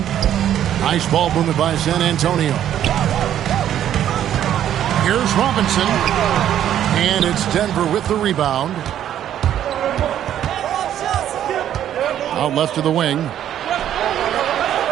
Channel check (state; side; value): quieter; left; 10.8 dB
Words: Nice ball movement by San Antonio. Here's Robinson. And it's Denver with the rebound. Out left to the wing.